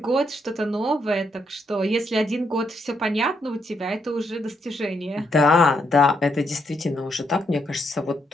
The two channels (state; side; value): normal; both; correlation 0.77